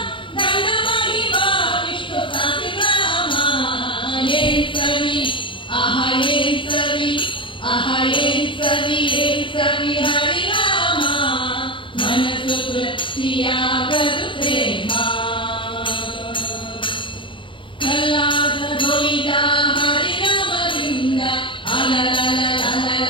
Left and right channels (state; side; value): late; right; 0.24 ms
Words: ಧನ ಮಹಿಮಾ ವಿಷ್ಣು ಸಹಸ್ರನಾಮ. ಏನ್ ಸವಿ ಏನ್ ಸವಿ ಏನ್ ಸವಿ ಹರಿನಾಮ ಮನಸ್ಸು ತೃಪ್ತಿಯಾಗದು ಪ್ರೇಮ. ಕಲ್ಲಾದ ದೊಯ್ದ ಹರಿನಾಮದಿಂದ